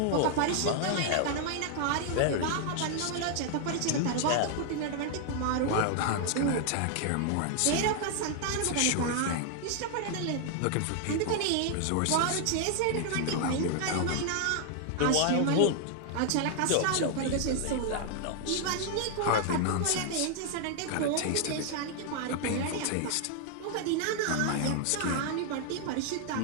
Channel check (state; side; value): different; both; correlation 0.00